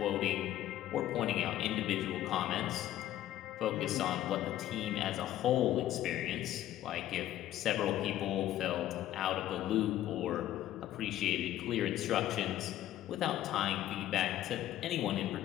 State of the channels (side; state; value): right; quieter; 12.9 dB